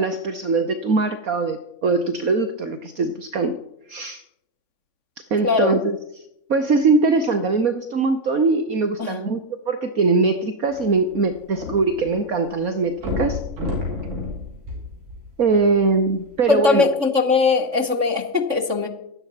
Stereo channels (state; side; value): late; left; 3.5 ms